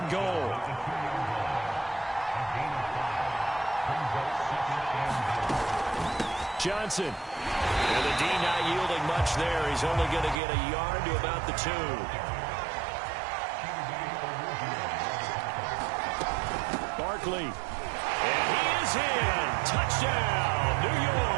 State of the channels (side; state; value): left; drops out; at 10.4 s